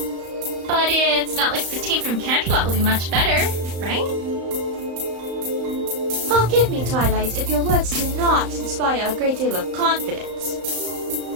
But it's not like the team from Canterlot will be much better, right? Forgive me, Twilight, if your words do not inspire a great deal of confidence.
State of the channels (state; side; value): late; left; 35 ms